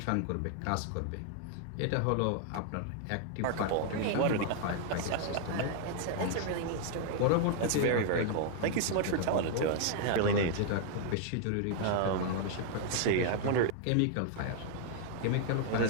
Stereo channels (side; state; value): both; different; correlation 0.00